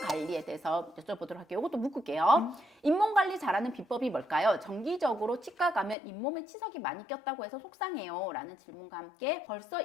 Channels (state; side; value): drops out; right; at 6.0 s